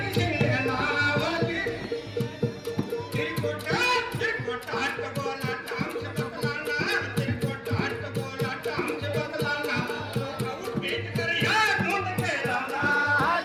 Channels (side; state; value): both; identical; correlation 1.00